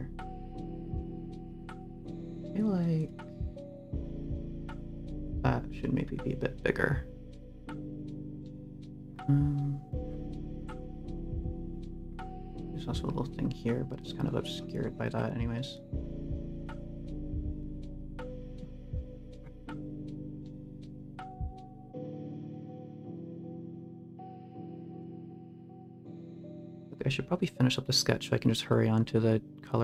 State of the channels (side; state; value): both; identical; correlation 1.00